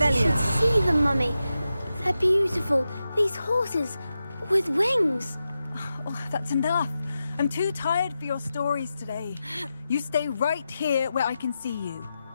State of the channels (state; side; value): inverted; both; correlation -0.91